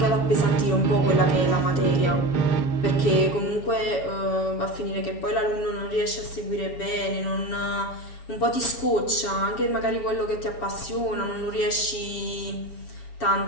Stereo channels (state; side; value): late; right; 7.1 ms